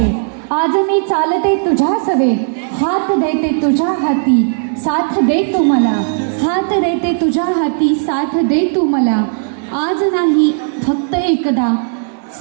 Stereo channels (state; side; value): silent; left; 60 dB below the other